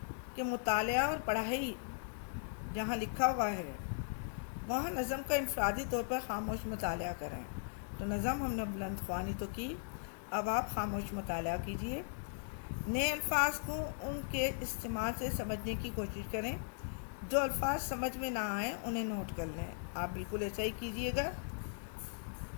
कि मुतालिया और पढ़ाई جہاں لکھا ہوا ہے وہاں نظم کا انفرادی طور پر خاموش مطالعہ کریں۔ تو نظم ہم نے بلند خوانی تو کی، اب آپ خاموش مطالعہ کیجئے۔ نئے الفاظ کو ان کے استعمال سے سمجھنے کی کوشش کریں، جو الفاظ سمجھ میں نہ آئیں انہیں نوٹ کر لیں۔ آپ بالکل ایسا ہی کیجئے گا۔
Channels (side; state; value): right; silent; digital silence